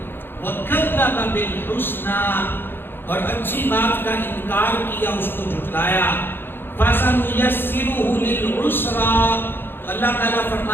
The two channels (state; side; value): late; right; 0.10 ms